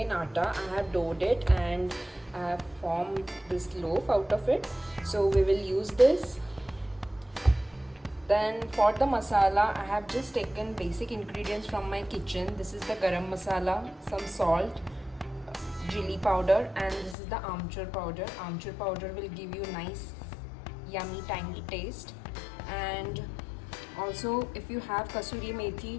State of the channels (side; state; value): right; drops out; at 17.2 s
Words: atta. I have doughed it and I have formed this loaf out of it. So we will use this. Then for the masala, I have just taken basic ingredients from my kitchen. This is the garam masala, some salt, chili powder, and this is the amchur powder. Amchur powder will give you nice yummy tangy taste. And also if you have kasuri